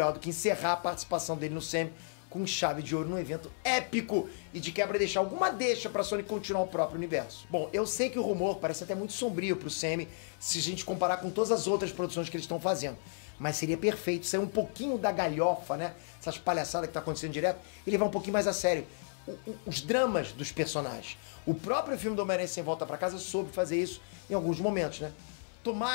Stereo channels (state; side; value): silent; right; 56 dB below the other